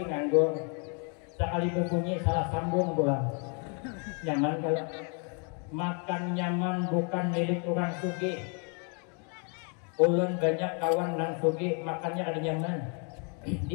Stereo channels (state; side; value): quieter; right; 38.4 dB